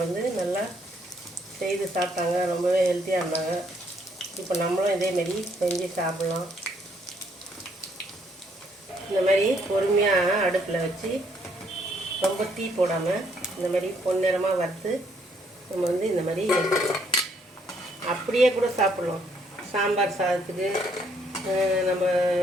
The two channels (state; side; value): normal; both; correlation 0.69